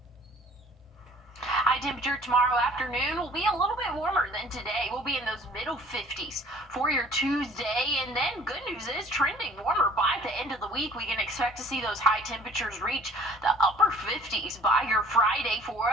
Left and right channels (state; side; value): normal; both; correlation 0.52